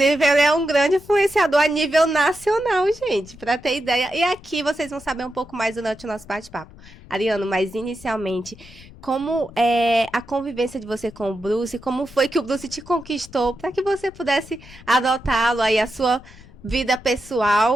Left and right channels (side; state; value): left; noise; rumble, 21 dB below the sound